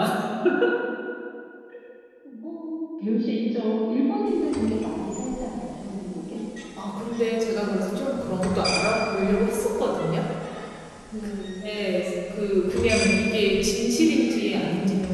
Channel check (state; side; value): identical; both; correlation 1.00